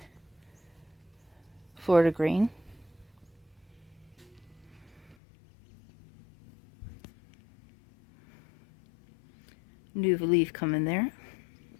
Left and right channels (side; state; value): right; drops out; at 5.2 s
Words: Florida green. New leaf coming there.